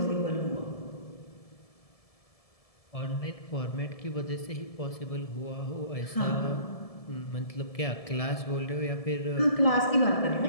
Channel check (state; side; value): late; right; 1.7 ms